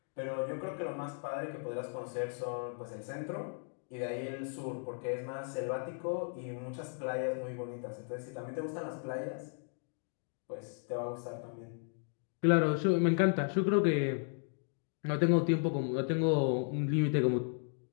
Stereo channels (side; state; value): right; silent; 54 dB below the other